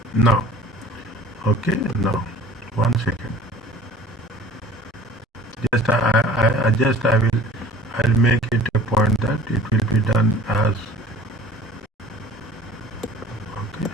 Now. Okay. Now. 1 second. Just I will I'll make it a point that it will be done as okay.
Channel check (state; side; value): normal; both; correlation 0.48